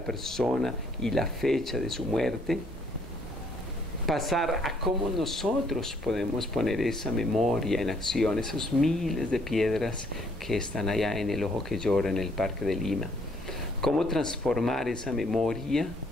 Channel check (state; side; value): normal; both; correlation 0.66